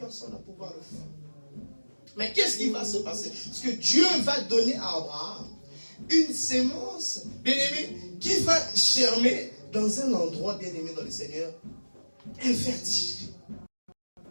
à pouvoir le faire. Mais qu'est-ce qui va se passer? Parce que Dieu va donner à Abraham une sémence, bien-aimé, qui va germer dans un endroit, bien-aimé dans le Seigneur, infertile.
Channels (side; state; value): both; inverted; correlation -1.00